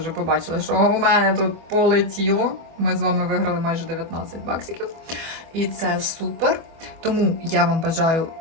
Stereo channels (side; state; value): left; late; 24 ms